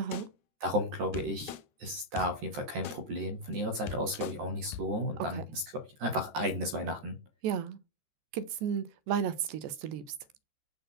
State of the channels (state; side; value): late; left; 13 ms